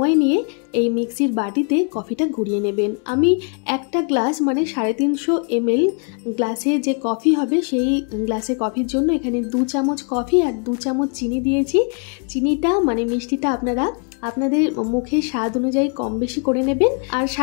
নিয়ে এই মিক্সির বাটিতে কফিটা ঘুরিয়ে নেবেন। আমি একটা গ্লাস মানে 350 ml গ্লাসে যে কফি হবে সেই গ্লাসে কফির জন্য এখানে 2 চামচ কফি আর 2 চামচ চিনি দিয়েছি। চিনিটা মানে মিষ্টিটা আপনারা আপনাদের মুখের স্বাদ অনুযায়ী কম বেশি করে নেবেন। আর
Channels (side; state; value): right; quieter; 39.1 dB